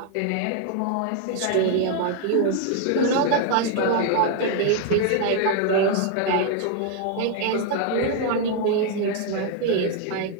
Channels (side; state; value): both; different; correlation 0.00